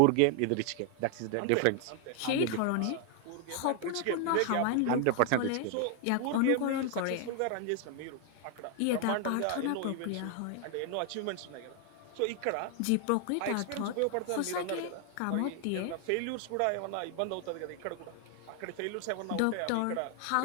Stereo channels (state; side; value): different; both; correlation 0.00